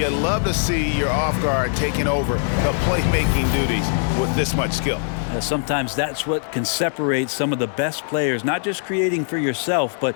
love to see your off guard taking over the playmaking duties with this much skill. Sometimes that's what can separate some of the best players, not just creating for yourself, but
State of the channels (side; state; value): right; silent; digital silence